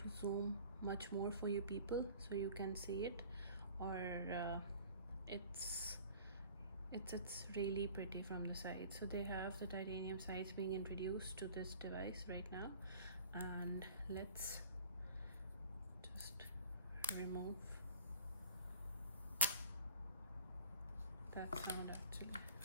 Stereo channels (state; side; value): inverted; both; correlation -0.47